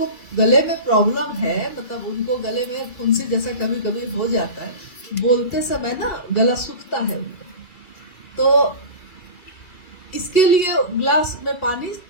गले में प्रॉब्लम है, मतलब उनको गले में फुंसी जैसा कभी कभी हो जाता है, बोलते समय ना गला सूखता है उनको, तो इसके लिए ग्लास में पानी,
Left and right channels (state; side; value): late; right; 2.3 ms